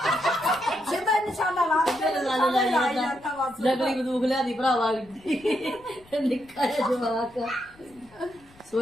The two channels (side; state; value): left; noise; rumble, 27 dB below the sound